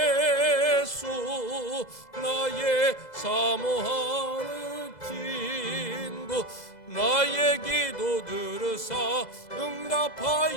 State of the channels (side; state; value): right; late; 2.0 ms